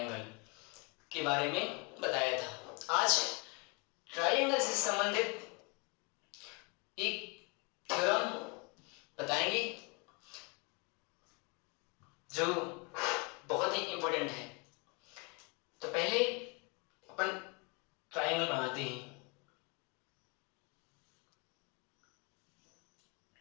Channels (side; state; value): right; quieter; 30.4 dB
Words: के बारे में बताया था। आज ट्रायंगल से संबंधित एक थ्योरम बताएंगे जो बहुत ही इंपॉर्टेंट है। तो पहले अपन ट्रायंगल बनाते हैं।